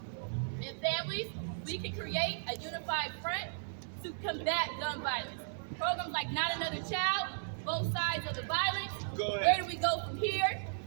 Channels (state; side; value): silent; left; digital silence